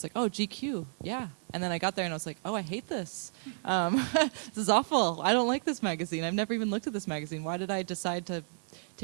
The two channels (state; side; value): silent; left; 56 dB below the other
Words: like, oh, GQ, yeah. And then I got there and I was like, oh, I hate this. This is awful. I don't like this magazine. I've never even looked at this magazine. Why did I decide to